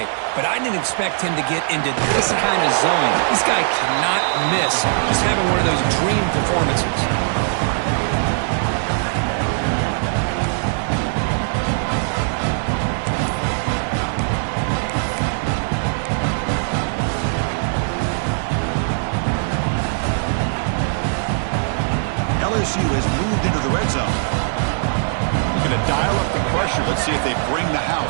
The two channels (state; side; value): silent; left; digital silence